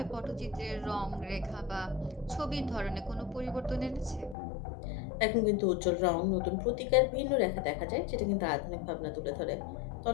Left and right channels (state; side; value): drops out; right; at 4.4 s